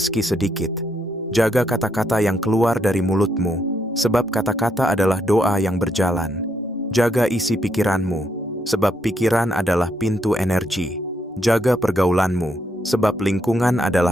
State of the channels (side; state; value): both; normal; correlation 0.76